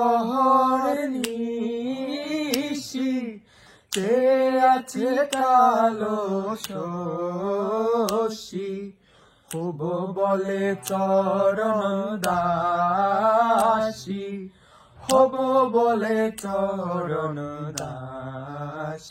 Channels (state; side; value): identical; both; correlation 1.00